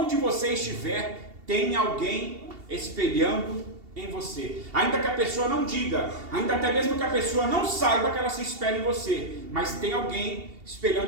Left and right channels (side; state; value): left; late; 2.7 ms